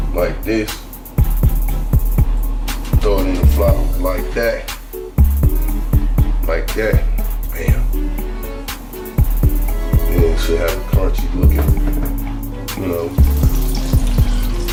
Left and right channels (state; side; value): identical; both; correlation 1.00